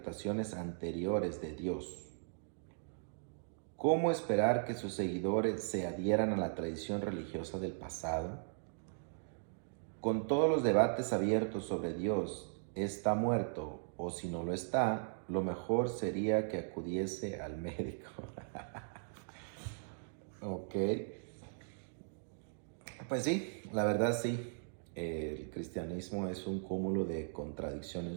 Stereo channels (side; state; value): left; silent; digital silence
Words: anteriores de Dios. ¿Cómo esperar que sus seguidores se adhieran a la tradición religiosa del pasado? Con todos los debates abiertos sobre Dios, ¿está muerto o si no lo está? Lo mejor sería que acudiese al médico. Ok. Pues sí, la verdad sí. El cristianismo es un cúmulo de